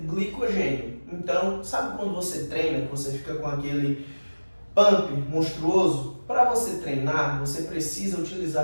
glicogênio. Então, sabe quando você treina, que você fica com aquele pump monstruoso? Para você treinar, você precisa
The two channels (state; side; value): inverted; both; correlation -1.00